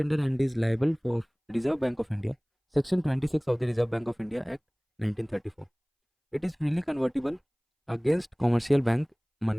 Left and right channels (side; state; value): both; identical; correlation 1.00